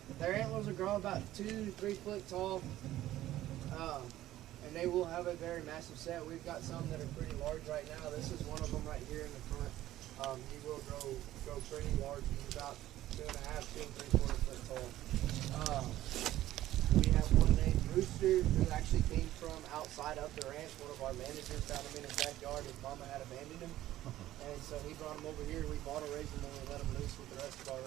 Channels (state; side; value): quieter; left; 14.3 dB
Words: Their antlers will grow about 2 to 3 foot tall. And they will have a very massive set. We've got some that are pretty large right now. This is one of them right here in the front. He will grow pretty large. He's about 2.5, 2 3/4 foot tall. We have one named Rooster who actually came from outside of the ranch. One of our managers found him in his backyard. His mama had abandoned him. And so he brought him over here. We bought a raise him and we let him loose with the rest of our